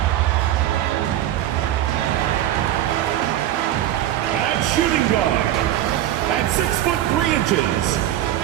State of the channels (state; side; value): quieter; left; 12.7 dB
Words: At shooting guard, at 6'3",